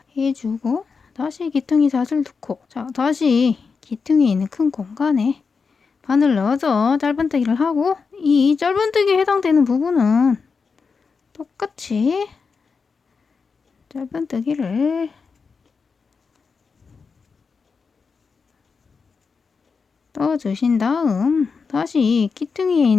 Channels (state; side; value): quieter; right; 5.1 dB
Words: 해주고 다시 귀퉁이 사슬 2코. 자, 다시 귀퉁이에 있는 큰 공간에 바늘 넣어서 짧은뜨기를 하고 이 짧은뜨기에 해당되는 부분은 똑같이 짧은뜨기를 떠주신 다음 다시 귀퉁이에